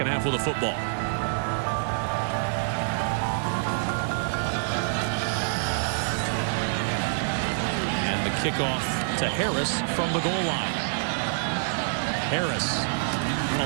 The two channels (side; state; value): left; silent; 55 dB below the other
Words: half with a football. And the kickoff to Harris from the goal line. Harris in